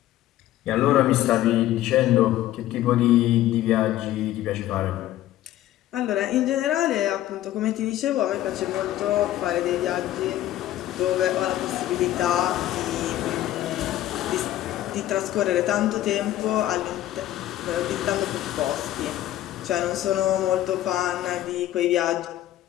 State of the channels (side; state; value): right; quieter; 13.8 dB